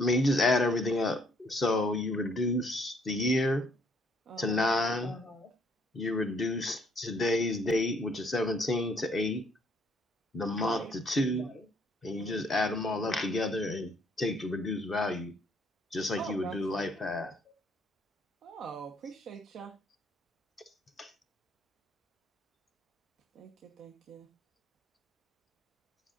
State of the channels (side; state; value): both; normal; correlation 0.65